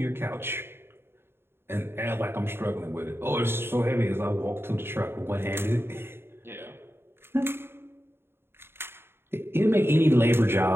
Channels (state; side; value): late; left; 0.11 ms